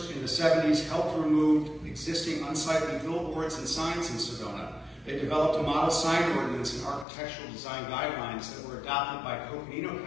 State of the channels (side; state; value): right; drops out; at 7.1 s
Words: in the 70s, helped remove existing unsightly billboards and signs in Sedona. They developed a model sign ordinance and architectural design guidelines that were adopted by Coconino